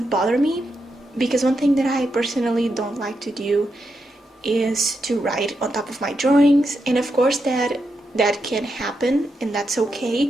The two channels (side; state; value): both; normal; correlation 0.84